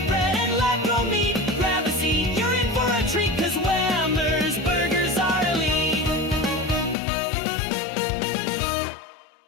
bread and lab-grown meat. Grab a seat, you're in for a treat, 'cause Whammer's burgers are elite.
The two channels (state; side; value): drops out; right; at 7.0 s